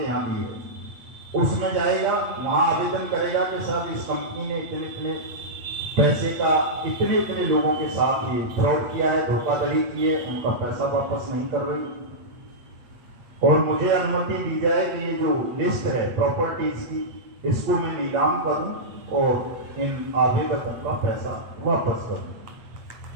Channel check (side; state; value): left; late; 8.5 ms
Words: यहाँ भी है, उसमें जाएगा, वहां आवेदन करेगा कि साहब इस कंपनी ने इतने इतने पैसे का इतने इतने लोगों के साथ ये फ्रॉड किया है, धोखाधड़ी की है, उनका पैसा वापस नहीं कर रही, और मुझे अनुमति दी जाए कि ये जो लिस्ट है प्रॉपर्टीज की, इसको मैं नीलाम करूं और इन आवेदकों का पैसा वापस करूं।